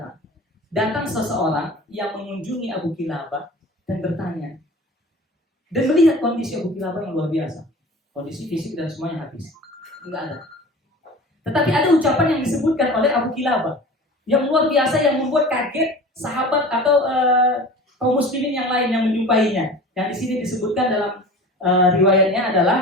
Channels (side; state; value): both; normal; correlation 0.38